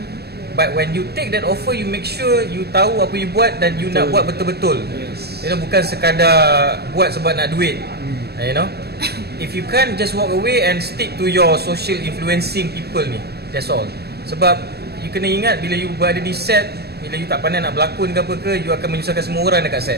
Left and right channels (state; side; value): late; left; 0.47 ms